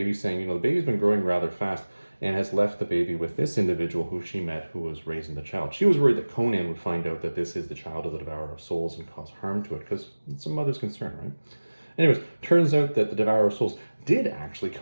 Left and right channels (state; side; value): inverted; both; correlation -1.00